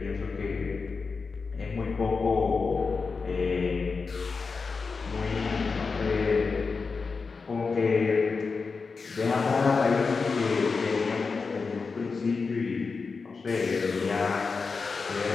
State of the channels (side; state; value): right; quieter; 4.7 dB